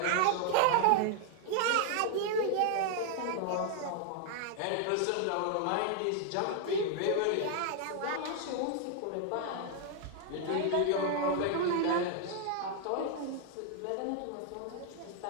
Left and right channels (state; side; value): different; both; correlation 0.00